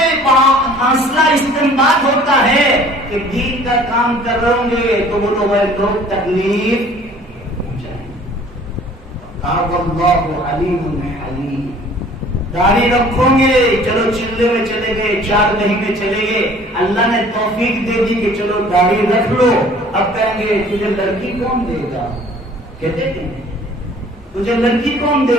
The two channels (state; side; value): normal; both; correlation 0.52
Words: حاصلہ استنباط ہوتا ہے کہ دین کا کام کر رہے ہوں گے تو وہ لوگ تکلیف پہنچائیں گے۔ واللہ علیم حلیم۔ داڑھی رکھو گے، چلو چلے میں چلے گئے، 4 مہینے چلے گئے، اللہ نے توفیق دے دی کہ چلو داڑھی رکھ لو، اب کہیں گے تجھے لڑکی کون دے گا؟ کہتے ہیں تجھے لڑکی کون دے